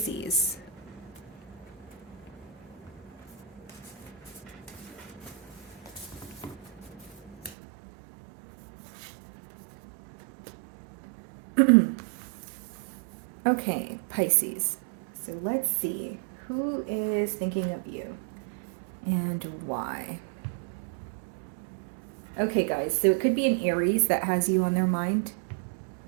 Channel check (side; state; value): left; drops out; at 7.6 s